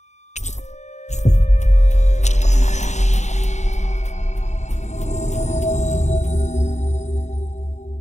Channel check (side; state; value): right; late; 0.33 ms